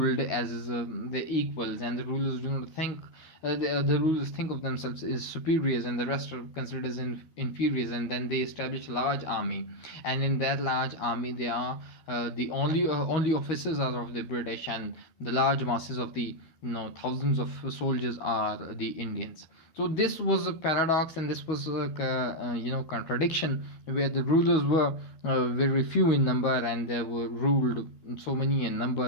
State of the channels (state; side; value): late; right; 12 ms